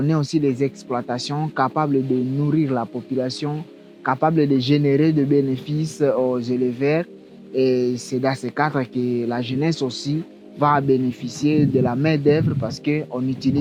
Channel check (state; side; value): identical; both; correlation 1.00